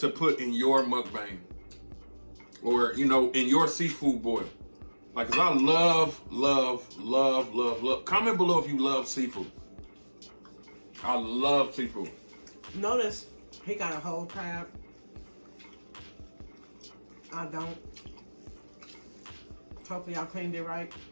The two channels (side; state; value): both; inverted; correlation -1.00